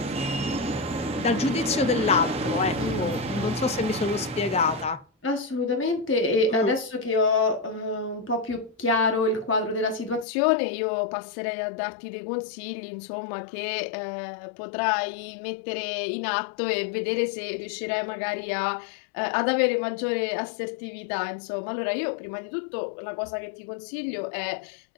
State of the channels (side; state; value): right; drops out; at 10.2 s